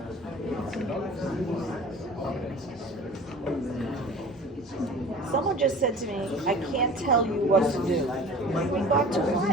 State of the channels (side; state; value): both; normal; correlation 0.42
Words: Someone just said to me, I can't tell you what to do. In regard to